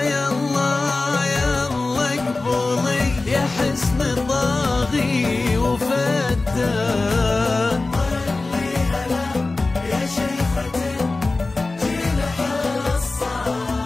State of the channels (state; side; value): quieter; right; 3.4 dB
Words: يا الله يا الله اقبلي يا حسن طاغي وفتان. طلي هلا يا شيخة الجيل حصة،